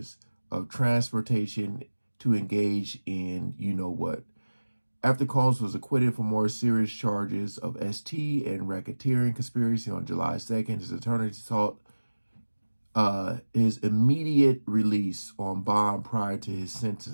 of transportation to engage in you-know-what. After Combs was acquitted for more serious charges of ST and racketeering conspiracy on July 2nd, his attorney sought his immediate release on bond prior to his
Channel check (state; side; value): inverted; both; correlation -1.00